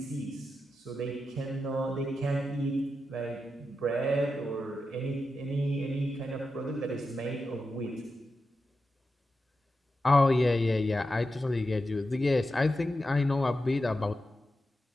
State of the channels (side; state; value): both; normal; correlation 0.89